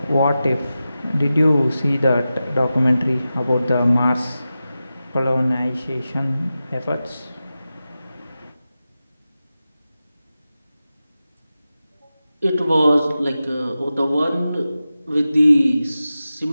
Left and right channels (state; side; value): inverted; both; correlation -0.93